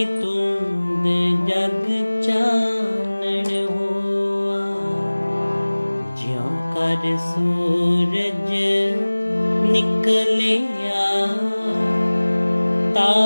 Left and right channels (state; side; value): inverted; both; correlation -1.00